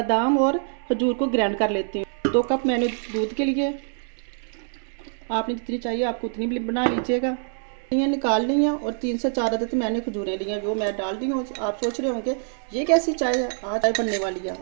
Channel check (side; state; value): left; silent; digital silence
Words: और खजूर को ग्राइंड कर लेती हूँ। 2 कप मैंने दूध के लिए, आपने जितनी चाहिए आपको उतनी भी बना लीजिएगा। ये निकाल ली हैं और 3 से 4 अदद मैंने खजूरें ली हैं, वो मैं डाल दी हूँ। आप सोच रहे होंगे ये कैसी चाय है, आज चाय बनने वाली है।